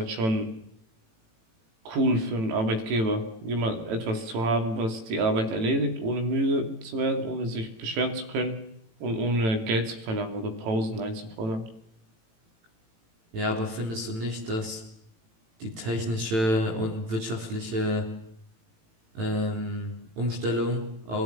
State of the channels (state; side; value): late; left; 18 ms